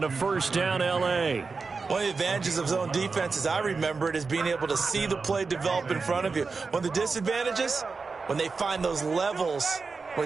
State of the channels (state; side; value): quieter; left; 4.5 dB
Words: a first down, L.A. One of the advantages of zone defense, as I remember it, is being able to see the play develop in front of you. One of the disadvantages, when they find those levels